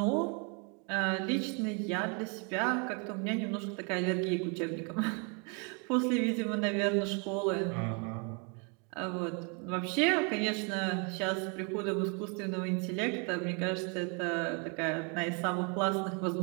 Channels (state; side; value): quieter; left; 35.8 dB